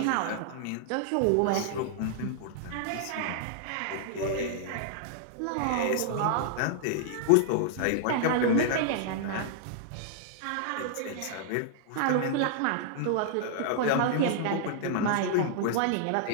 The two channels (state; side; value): different; both; correlation -0.01